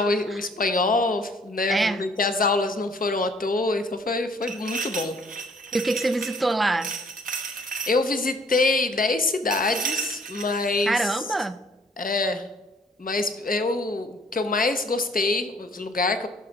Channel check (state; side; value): normal; both; correlation 0.59